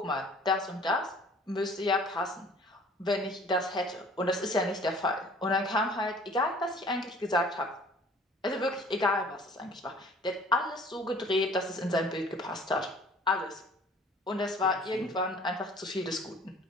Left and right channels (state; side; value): normal; both; correlation 0.51